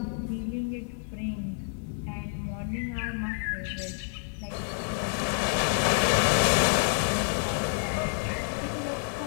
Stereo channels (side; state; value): right; silent; 59 dB below the other